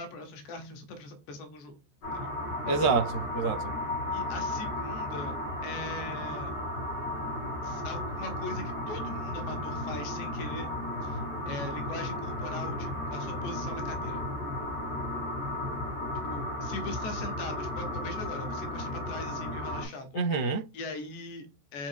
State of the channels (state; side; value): late; right; 14 ms